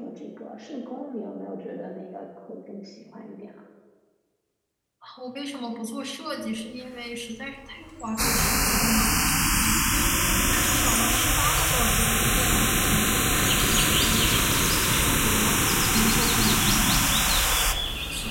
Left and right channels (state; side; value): identical; both; correlation 1.00